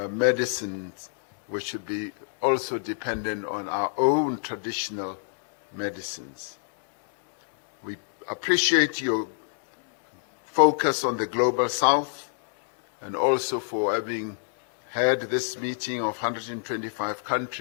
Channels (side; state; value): right; silent; digital silence